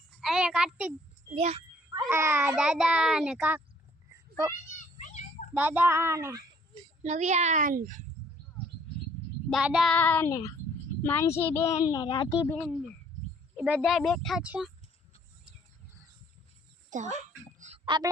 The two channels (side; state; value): both; normal; correlation 0.60